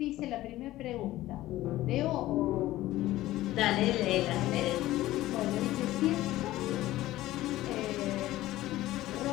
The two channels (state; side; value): quieter; right; 15.9 dB